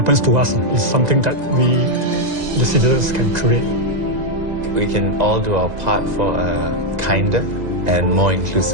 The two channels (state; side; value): late; left; 2.0 ms